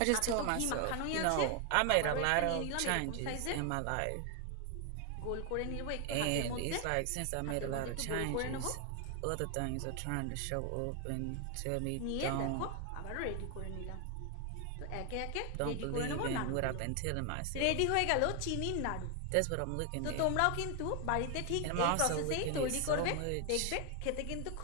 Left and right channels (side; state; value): both; different; correlation 0.00